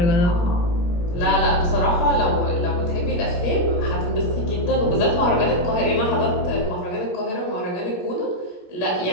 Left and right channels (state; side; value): late; right; 17 ms